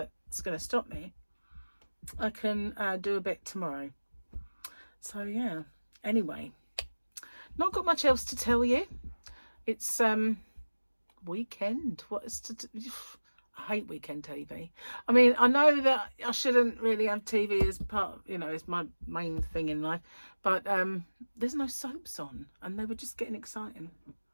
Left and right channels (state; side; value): inverted; both; correlation -1.00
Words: going to stop me, I can do a bit tomorrow. So yeah, anyway, not got much else to tell you. It's weekend. What is to do? I hate weekend TV. I mean, I know that I shouldn't really have TV as part, you know, as my main thing in life, but there's no soaps on, and they were just getting exciting.